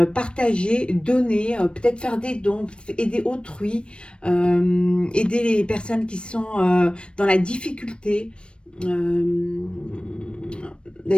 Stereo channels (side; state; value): right; late; 0.057 ms